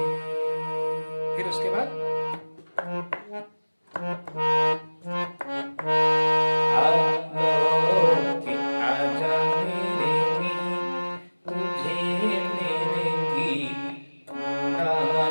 फिर उसके बाद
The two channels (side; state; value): both; inverted; correlation -1.00